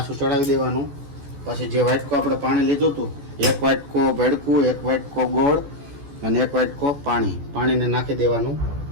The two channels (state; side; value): late; left; 14 ms